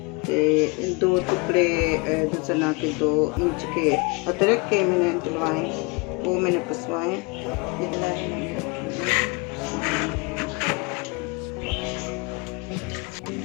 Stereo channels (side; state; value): right; quieter; 29.0 dB